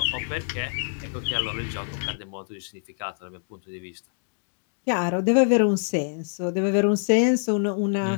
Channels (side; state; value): right; silent; digital silence